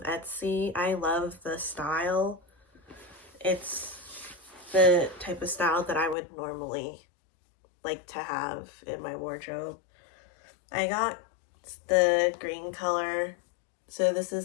Etsy. I love the style. It's the type of style that I would normally like to have in my wardrobe. I got the green color, so this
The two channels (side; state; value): right; drops out; at 6.2 s